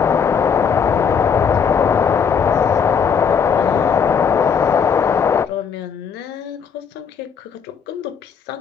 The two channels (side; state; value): right; quieter; 6.7 dB